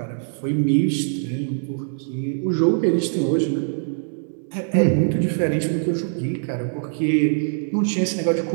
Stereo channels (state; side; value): silent; left; 64 dB below the other